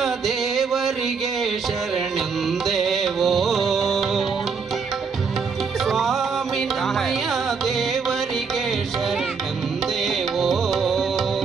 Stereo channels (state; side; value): quieter; left; 5.4 dB